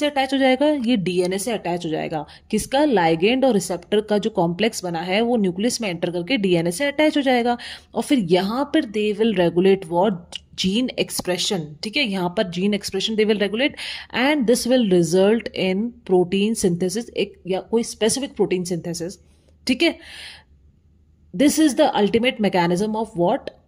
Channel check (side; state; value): both; identical; correlation 1.00